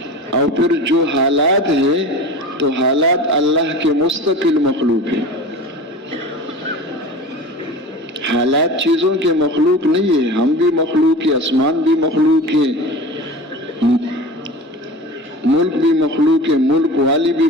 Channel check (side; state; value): both; normal; correlation 0.34